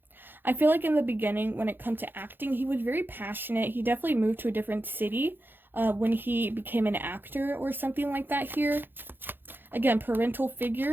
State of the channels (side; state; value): left; late; 0.098 ms